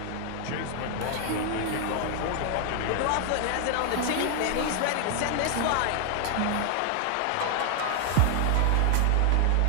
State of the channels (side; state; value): both; different; correlation 0.00